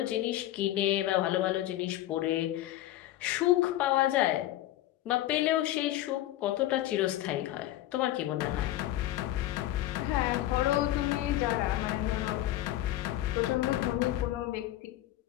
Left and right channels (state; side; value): quieter; right; 14.5 dB